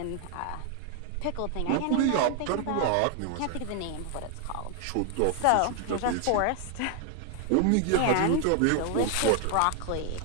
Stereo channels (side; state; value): both; different; correlation 0.00